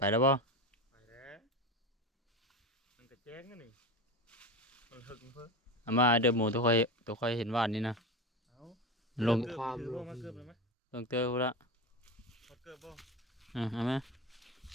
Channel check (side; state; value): both; normal; correlation 0.23